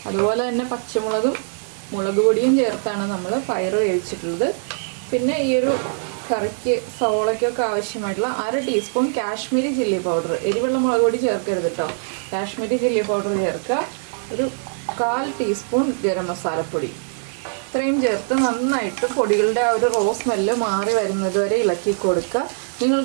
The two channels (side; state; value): left; silent; digital silence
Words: അതുപോലെ തന്നെ പച്ചമുളകും മുളക് പൊടിയും ചേർത്താണ് നമ്മൾ പയർ വേവിച്ചിട്ടുള്ളത്. പിന്നെ ഈ ഒരു കറിക്ക് സവോളയ്ക്കൊക്കെ ആവശ്യമായിട്ടുള്ള 1/2 ടീസ്പൂൺ കാശ്മീരി ചില്ലി പൗഡർ, എരിവുള്ള മുളക് പൊടി ചേർക്കരുത് കേട്ടോ, കാശ്മീരി ചില്ലി പൗഡർ ചേർക്കുക. ഒരു 1/4 ടീസ്പൂൺ ഗരം മസാലപ്പൊടി. ഇത്രയും ചേർത്ത് നന്നായിട്ട് പൊടികളുടെ ആ ഒരു റോ സ്മെല്ല് മാറി വരുന്നത് വരെ ഇളക്കി കൊടുക്കുക.